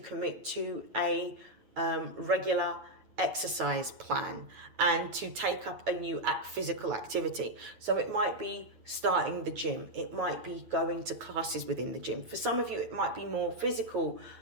to a regular exercise plan and to take up a new physical activity. So it might be starting the gym, it might be going to classes within the gym. For some of you, it might be more physical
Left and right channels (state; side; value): late; left; 9.2 ms